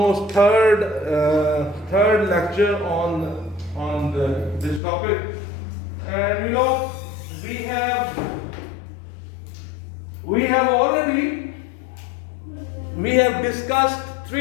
third lecture on this topic. And we have discussed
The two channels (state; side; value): drops out; right; at 4.8 s